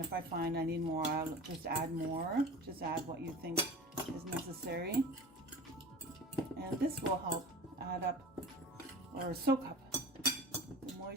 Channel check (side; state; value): both; normal; correlation 0.36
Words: I find I need more I'll just add more. Just add what you think is necessary, and this will help add up or soak up the